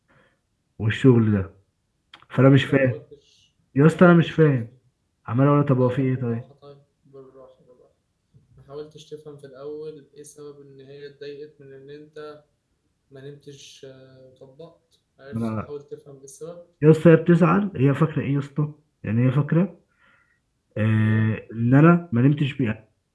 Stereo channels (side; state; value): both; identical; correlation 1.00